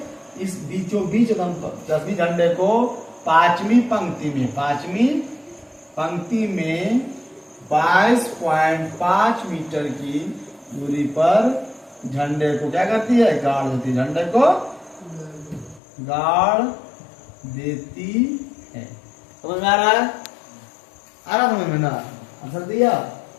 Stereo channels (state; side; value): drops out; right; at 15.8 s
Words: इस बीचों बीच रश्मि झंडे को 5वीं पंक्ति में 22.5 मीटर की दूरी पर झंडे को क्या करती है? गाड़ देती है। झंडे को गाड़ देती है। समझ में आ रहा है? आ रहा समझ में ना? आंसर दिया।